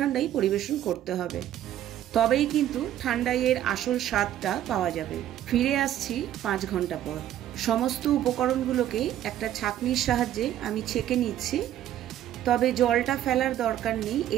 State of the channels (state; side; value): quieter; left; 11.8 dB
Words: পরিবেশন করতে হবে, তবেই কিন্তু ঠান্ডাইয়ের আসল স্বাদটা পাওয়া যাবে। ফিরে আসছি 5 ঘন্টা পর। সমস্ত উপকরণগুলোকে একটা ছাঁকনির সাহায্যে আমি ছেঁকে নিচ্ছি, তবে জলটা ফেলার দরকার নেই।